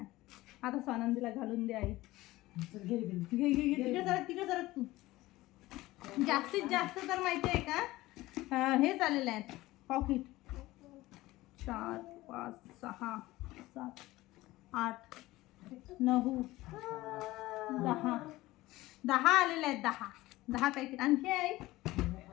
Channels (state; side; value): quieter; right; 18.1 dB